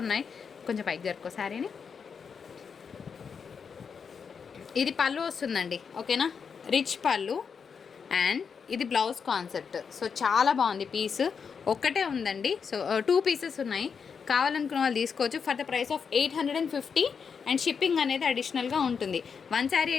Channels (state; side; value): quieter; right; 6.2 dB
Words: ఉన్నాయి. కొంచెం పైకి జరుపుకో శారీని. ఇది పళ్ళు వస్తుందండి, ఓకేనా, రిచ్ పళ్ళు. అండ్ ఇది బ్లౌజ్ కాన్సెప్ట్. సో చాలా బాగుంది పీస్. ఒక్కటే ఉందండి, సో 2 పీసెస్ ఉన్నాయి. కావాలనుకున్న వాళ్ళు తీసుకోవచ్చు for the price of 850. And shipping అనేది అడిషనల్గా ఉంటుంది. 1 శారీ